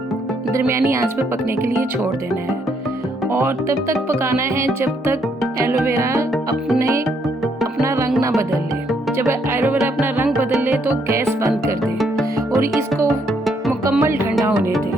दरमियानी आंच पे पकने के लिए छोड़ देना है। और तब तक पकाना है जब तक एलोवेरा अपना रंग ना बदल ले। जब एलोवेरा अपना रंग बदल ले तो गैस बंद कर दे और इसको मुकम्मल ठंडा होने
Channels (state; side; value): normal; both; correlation 0.72